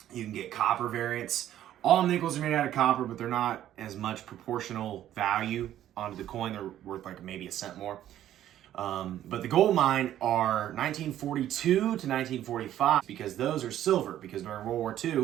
you can get copper variants. All nickels are made out of copper, but they're not as much proportional value onto the coin. They're worth like maybe a cent more. But the gold mine are 1942 to 1945 because those are silver. Because during World War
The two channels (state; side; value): quieter; left; 12.0 dB